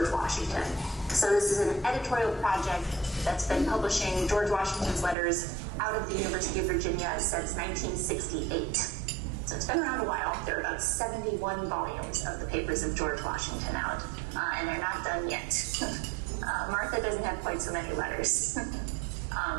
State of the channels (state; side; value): drops out; left; at 5.2 s